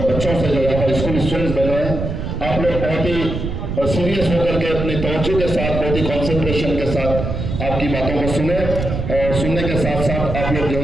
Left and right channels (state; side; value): noise; right; rumble, 4 dB below the sound